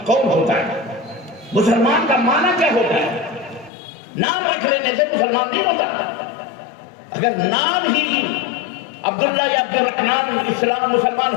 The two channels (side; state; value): right; drops out; at 3.7 s